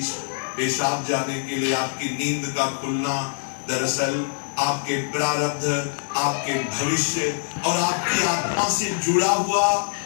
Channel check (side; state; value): right; silent; 59 dB below the other